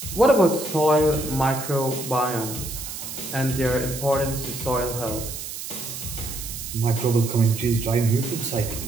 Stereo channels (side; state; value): right; noise; hiss, 8 dB below the sound